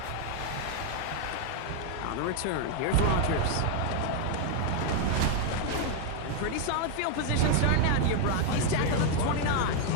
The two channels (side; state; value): both; different; correlation 0.01